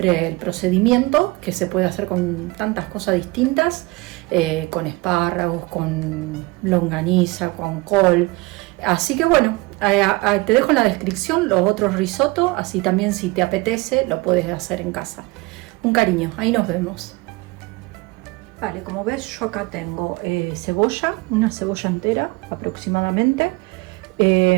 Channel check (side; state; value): left; quieter; 23.6 dB